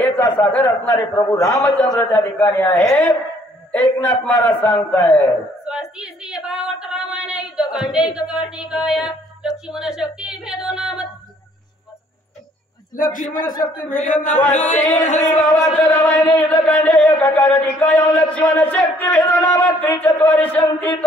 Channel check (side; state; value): both; normal; correlation 0.62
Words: सागर असणारे प्रभू रामचंद्र त्या ठिकाणी आहेत. एकनाथ महाराज सांगतायत, स्वास्ती श्री भावार्थ रामायण युद्धकांडे कर्णिकाय. लक्ष्मण शक्ती भेदो नाम. लक्ष्मण शक्ती भेदो नाम. श्री भावार्थ रामायण युद्धकांडे कर्णिकाय. लक्ष्मण शक्ती भेदो नाम. त्रिचत्वारिशंती